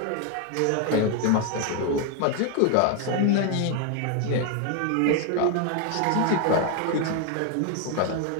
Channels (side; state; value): both; different; correlation 0.01